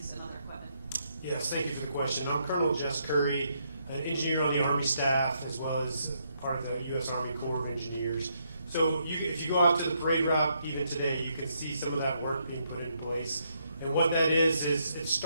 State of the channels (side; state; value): both; inverted; correlation -0.76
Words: and other equipment? Yes, thank you for the question. I'm Colonel Jess Curry, an engineer on the Army staff, as well as part of the U.S. Army Corps of Engineers. So if you go out to the parade route even today, you can see some of that work being put in place. And what that is it